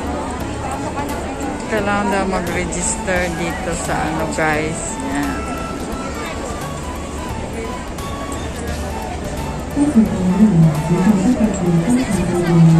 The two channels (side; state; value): both; identical; correlation 1.00